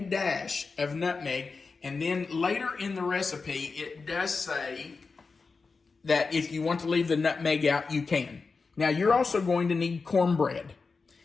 dash of nutmeg. And then later in the recipe, it does say that if you want to leave the nutmeg out, you can. Now, you're also going to need cornbread.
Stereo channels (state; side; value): quieter; right; 4.5 dB